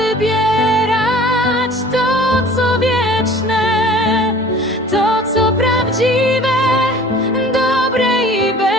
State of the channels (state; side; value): normal; both; correlation 0.47